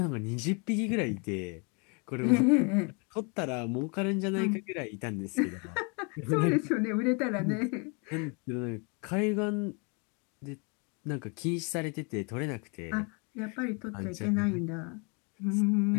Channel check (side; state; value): right; quieter; 33.5 dB